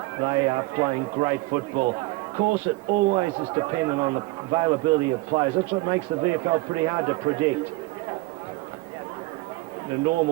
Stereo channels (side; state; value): left; quieter; 21.7 dB